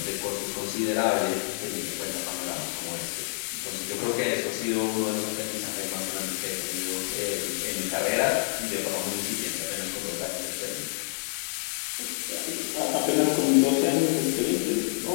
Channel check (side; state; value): right; silent; digital silence